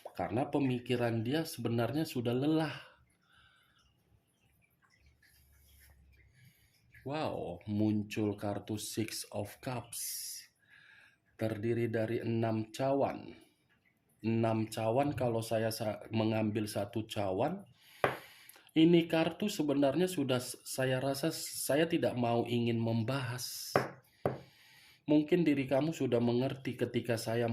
Karena pemikiran dia sebenarnya sudah lelah. Wow, muncul kartu Six of Cups. Terdiri dari 6 cawan. 6 cawan, kalau saya mengambil satu cawan, Ini kartu sebenarnya sudah saya rasa saya tidak mau ingin membahas. Mungkin diri kamu sudah mengerti ketika saya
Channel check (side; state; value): both; identical; correlation 1.00